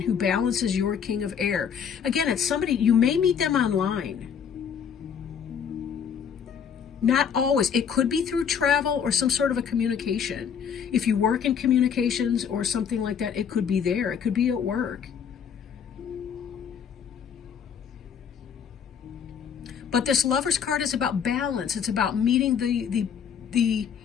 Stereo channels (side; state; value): right; quieter; 7.4 dB